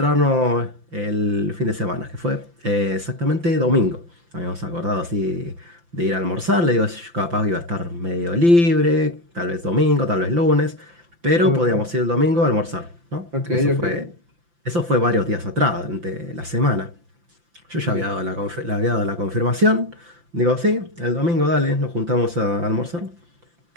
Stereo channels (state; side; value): late; left; 5.8 ms